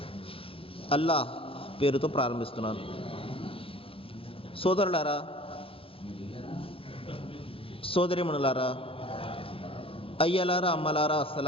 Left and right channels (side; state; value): right; late; 0.27 ms